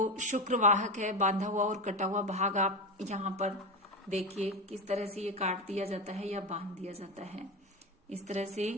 शुक्रवाहक है बांधा हुआ और कटा हुआ भाग आप यहाँ पर देखिए किस तरह से ये काट दिया जाता है या बांध दिया जाता है। इस तरह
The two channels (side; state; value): both; normal; correlation 0.19